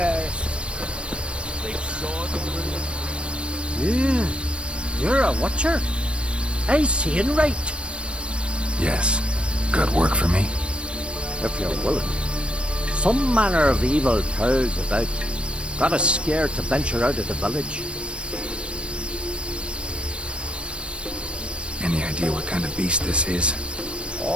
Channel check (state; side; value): late; left; 0.059 ms